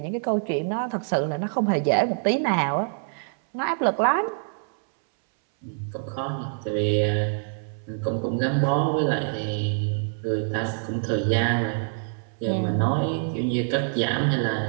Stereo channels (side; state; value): left; silent; 61 dB below the other